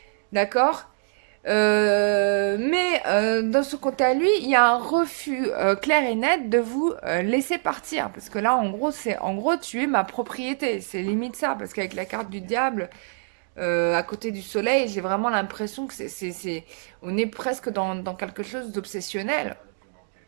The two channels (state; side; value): silent; left; 62 dB below the other